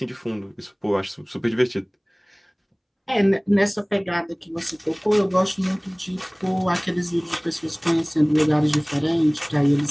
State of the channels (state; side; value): identical; both; correlation 1.00